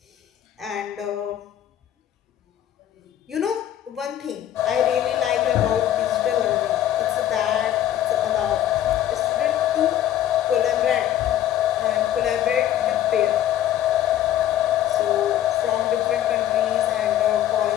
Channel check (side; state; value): right; quieter; 11.7 dB